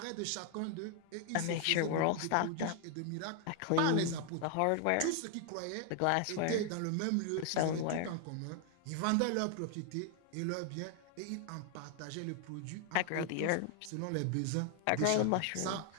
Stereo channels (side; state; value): both; different; correlation 0.00